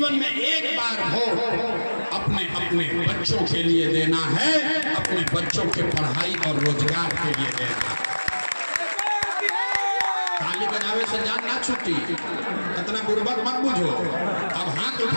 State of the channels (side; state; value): both; inverted; correlation -1.00